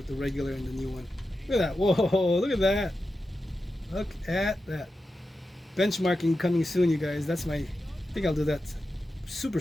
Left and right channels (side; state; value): both; normal; correlation 0.91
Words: the regular and the new one. Look at that! Whoa! Look at that! Look at that! Benchmarking coming soon, you guys. I think I'll do that super